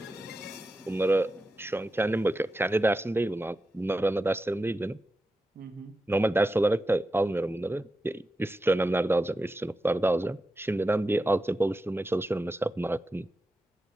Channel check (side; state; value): both; normal; correlation 0.90